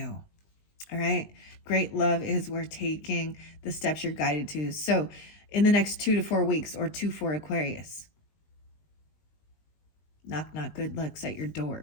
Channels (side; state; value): right; late; 20 ms